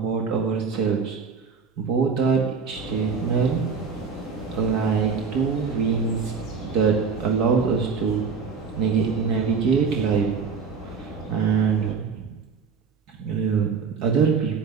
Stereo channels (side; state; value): left; quieter; 5.5 dB